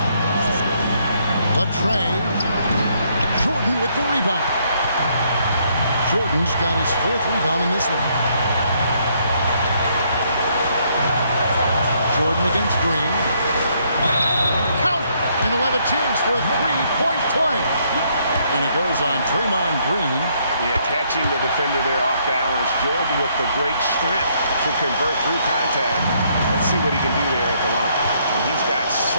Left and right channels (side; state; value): both; inverted; correlation -0.70